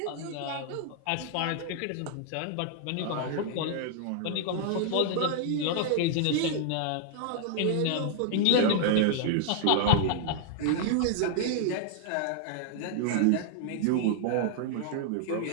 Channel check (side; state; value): both; different; correlation 0.00